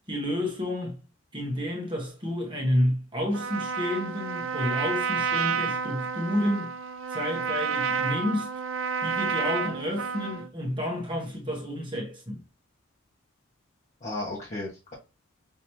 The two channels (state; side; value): normal; both; correlation 0.51